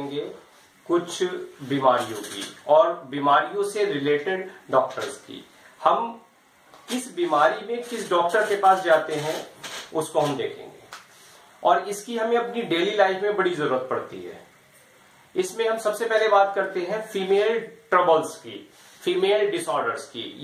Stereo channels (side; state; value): both; identical; correlation 1.00